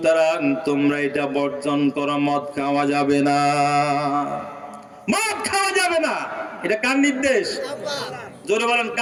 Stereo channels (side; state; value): both; identical; correlation 1.00